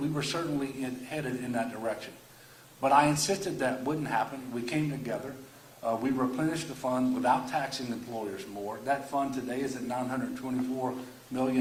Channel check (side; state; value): both; identical; correlation 1.00